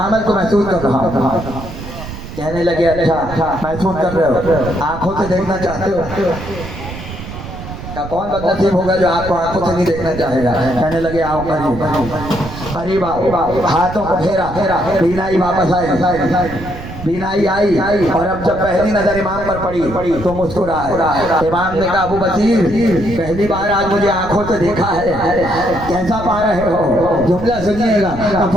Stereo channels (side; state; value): right; noise; rumble, 10 dB below the sound